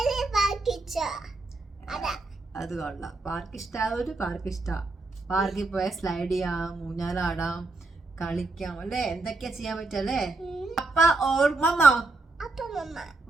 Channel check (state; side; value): quieter; left; 3.3 dB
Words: അത് കൊള്ളാം. പാർക്ക് ഇഷ്ടമായവര് പാർക്ക് ഇഷ്ടം. പാർക്കിൽ പോയാൽ സ്ലൈഡ് ചെയ്യാം, ഊഞ്ഞാലാടാം, കളിക്കാം അല്ലേ, എന്തൊക്കെയാ ചെയ്യാൻ പറ്റല്ലേ. അപ്പ ഓർ മമ്മ?